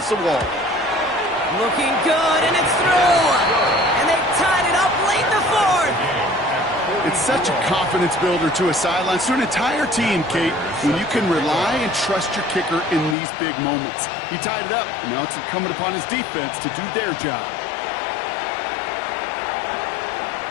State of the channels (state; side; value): drops out; right; at 13.2 s